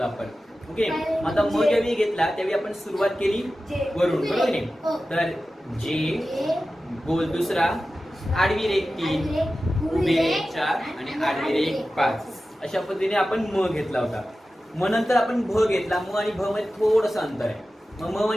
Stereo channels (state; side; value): normal; both; correlation 0.94